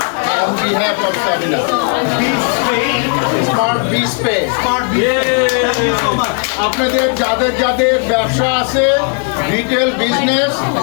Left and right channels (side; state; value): right; quieter; 39.2 dB